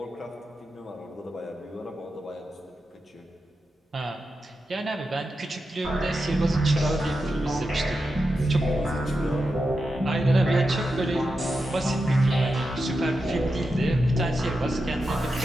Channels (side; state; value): both; normal; correlation 0.89